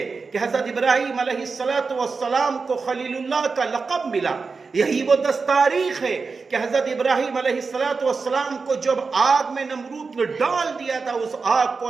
کہ حضرت ابراہیم علیہ السلام کو خلیل اللہ کا لقب ملا۔ یہی وہ 10 تاریخ ہے کہ حضرت ابراہیم علیہ السلام کو جب آگ میں نمرود نے ڈال دیا تھا، اس آگ کو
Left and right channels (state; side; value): quieter; left; 4.6 dB